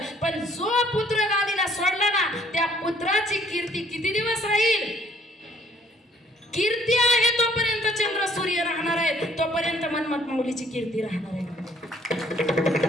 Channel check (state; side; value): normal; both; correlation 0.61